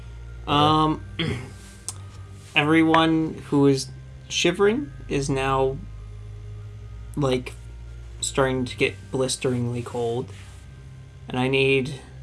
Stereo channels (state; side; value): identical; both; correlation 1.00